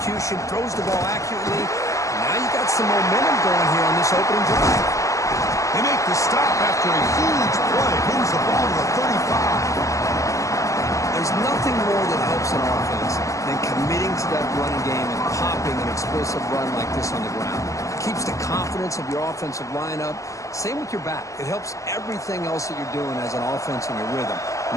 throws the ball accurately. Now you got some momentum going here on this opening drive. They make the stop after a huge play. Moves the ball to the 35. There's nothing more that helps an offense than committing to that running game and popping an explosive run like this on the ground. It keeps the confidence of your offensive line up. Same with your back. It helps everything else that you're doing as an offense in your rhythm.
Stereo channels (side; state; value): right; late; 0.15 ms